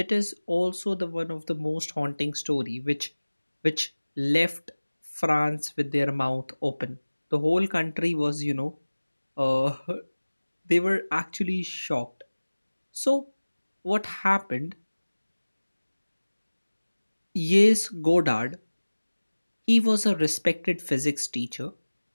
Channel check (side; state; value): both; inverted; correlation -1.00